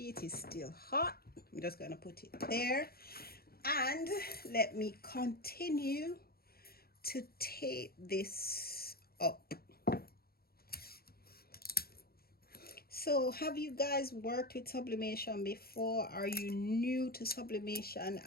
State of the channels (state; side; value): late; right; 0.44 ms